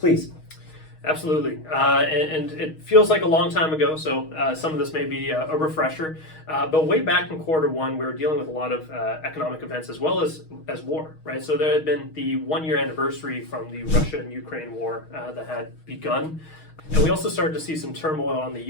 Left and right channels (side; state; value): right; late; 6.4 ms